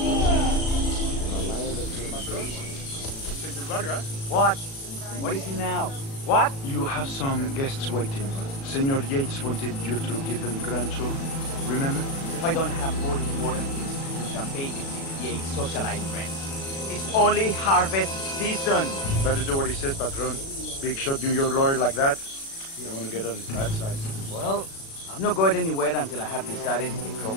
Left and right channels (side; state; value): right; late; 36 ms